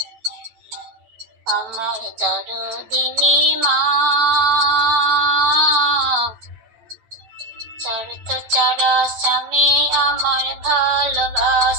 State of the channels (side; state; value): left; late; 9.0 ms